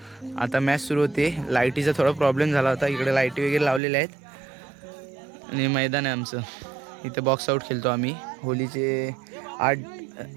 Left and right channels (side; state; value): left; drops out; at 3.8 s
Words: आता मॅच सुरू होते. लाईटीचा थोडा प्रॉब्लेम झाला होता. इकडे लाईटी वगैरे लावलेल्या आहेत आणि मैदान आहे आमचं. इथं बॉक्स आऊट खेळतो आम्ही. होलीचे